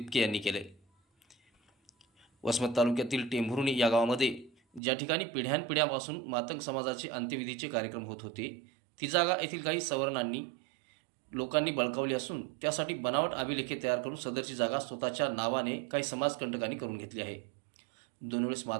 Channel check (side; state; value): left; drops out; at 4.8 s